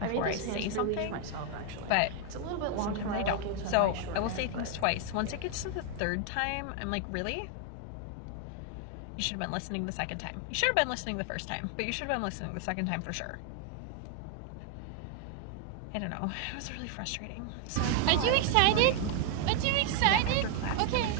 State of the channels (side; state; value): both; different; correlation 0.00